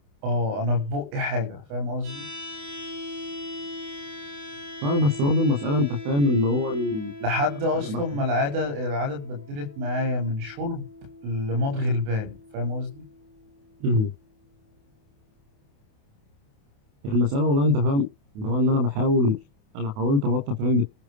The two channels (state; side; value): late; left; 28 ms